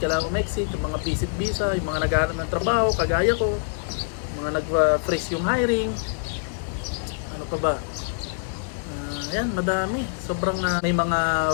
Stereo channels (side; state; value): right; silent; digital silence